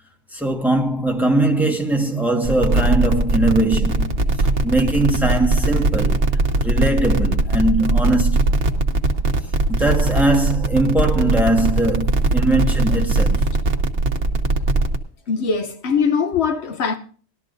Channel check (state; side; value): normal; both; correlation 0.55